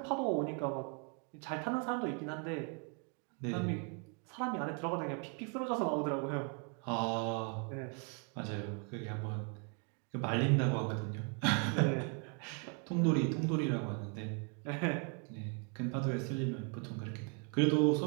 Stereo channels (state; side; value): quieter; left; 38.1 dB